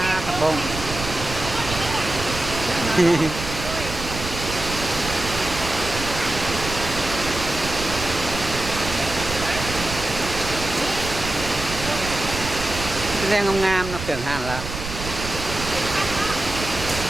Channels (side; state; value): right; noise; rumble, 8 dB below the sound